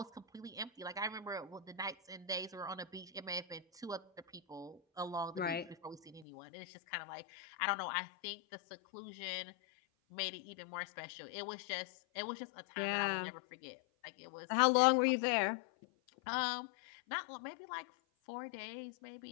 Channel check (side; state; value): right; drops out; at 6.2 s